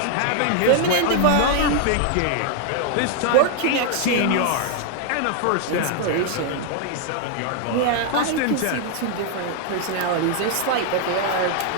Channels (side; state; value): both; different; correlation 0.00